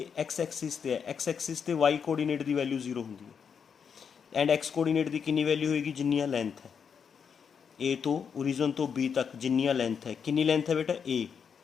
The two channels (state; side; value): quieter; right; 6.8 dB